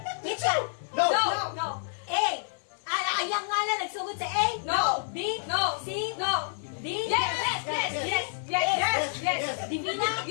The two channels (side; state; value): right; silent; 59 dB below the other